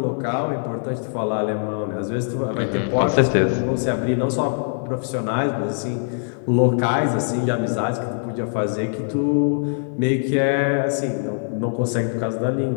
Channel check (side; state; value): right; silent; digital silence